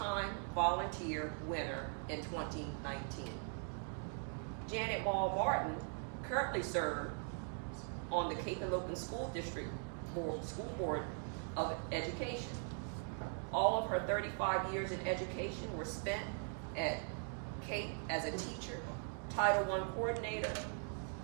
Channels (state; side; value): silent; left; 50 dB below the other